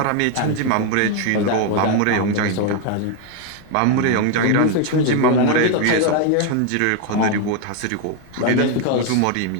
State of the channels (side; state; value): both; different; correlation 0.01